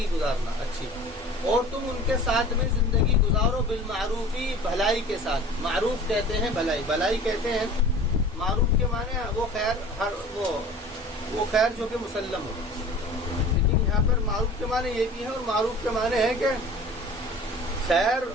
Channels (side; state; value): both; normal; correlation 0.43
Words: گزارنا اچھی، اور تم ان کے ساتھ میں زندگی گزارو بالمعروفی، بھلائی کے ساتھ۔ معروف کہتے ہیں بھلائی، بھلائی کہتے ہیں، معروف کے معنی وہ خیر، وہ خیر جو کہ مسلم ہو، لیکن یہاں پر معروف کے معنی یہ بھی ہے، اور معروف کے معنی ہے کہ خیر